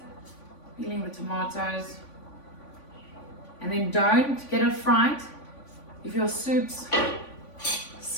peeling the tomatoes. And then don't get it fried. If your soup's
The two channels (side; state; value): right; late; 3.5 ms